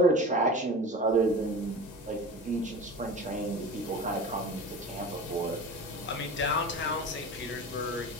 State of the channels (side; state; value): both; normal; correlation 0.33